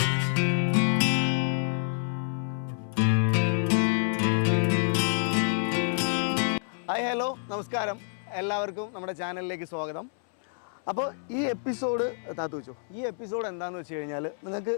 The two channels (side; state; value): right; silent; 59 dB below the other